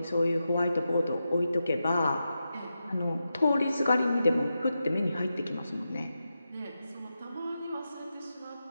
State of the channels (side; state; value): both; inverted; correlation -0.89